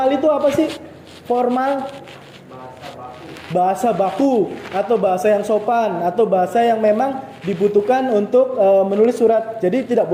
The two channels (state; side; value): identical; both; correlation 1.00